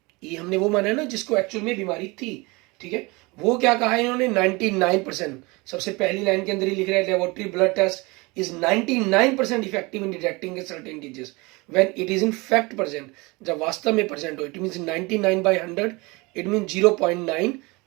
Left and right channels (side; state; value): left; quieter; 25.2 dB